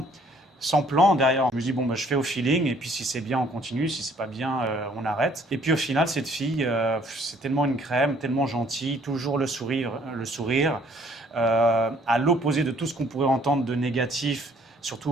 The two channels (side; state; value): both; normal; correlation 0.60